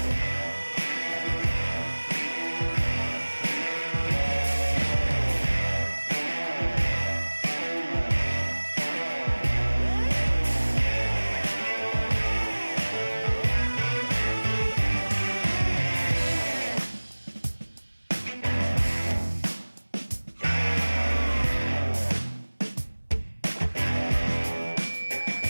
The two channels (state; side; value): inverted; both; correlation -1.00